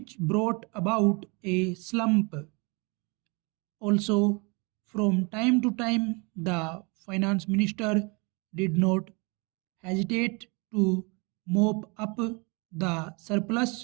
brought about a slump. Also, from time to time, the finance minister did not hesitate to mop up the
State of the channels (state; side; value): quieter; left; 30.3 dB